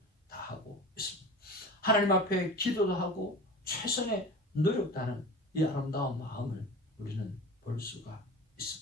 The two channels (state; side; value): normal; both; correlation 0.34